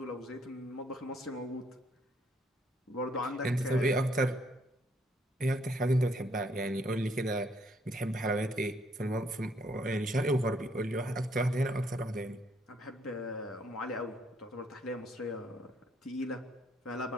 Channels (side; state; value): both; normal; correlation 0.69